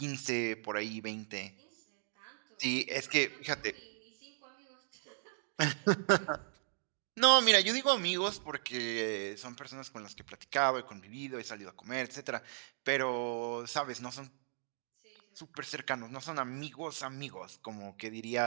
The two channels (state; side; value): silent; left; digital silence